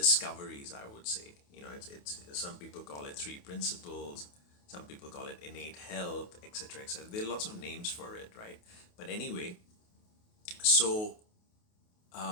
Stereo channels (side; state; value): right; late; 28 ms